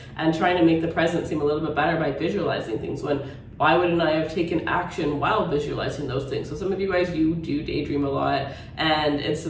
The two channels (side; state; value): both; identical; correlation 1.00